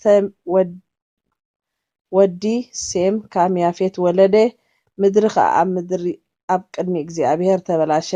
ወዲ ሴም ካም ያፌት ወለደ ምድሪ ከዓ ኣብ ቅድሚ እግዚኣብሔር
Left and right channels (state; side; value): identical; both; correlation 1.00